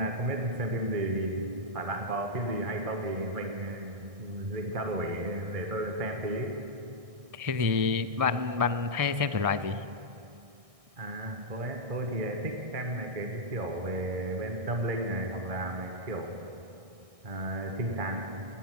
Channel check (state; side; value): late; left; 1.6 ms